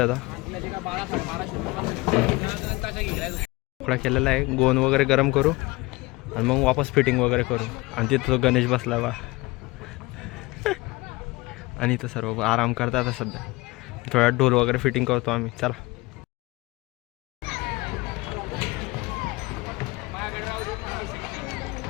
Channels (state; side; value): quieter; right; 22.7 dB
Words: आता. तुकडा केलेला आहे. गोंद वगैरे गरम करू आणि मग वापस फिटिंग वगैरे करू. आणि तिथं गणेश बसला बा आणि इथं सर्व आराम करतात आता सध्या. थोड्या ढोल वगैरे फिटिंग करतो आम्ही. चला.